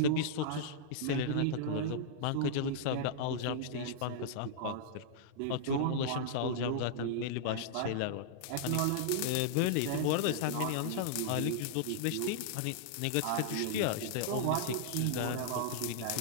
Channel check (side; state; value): both; different; correlation -0.01